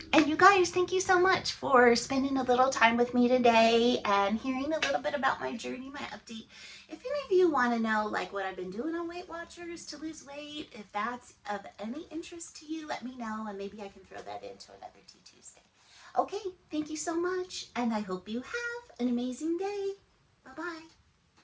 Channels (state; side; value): identical; both; correlation 1.00